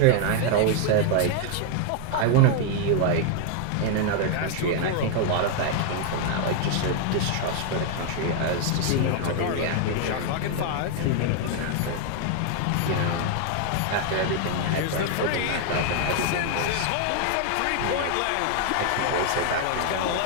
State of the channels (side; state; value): both; different; correlation 0.00